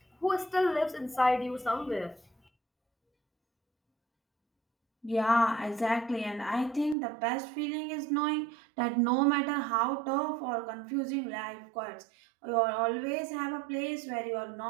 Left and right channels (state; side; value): drops out; left; at 7.0 s